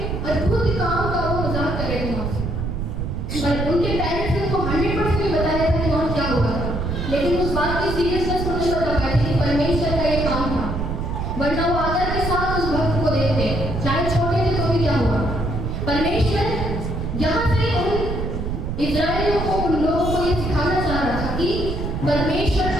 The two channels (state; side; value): noise; right; rumble, 3 dB below the sound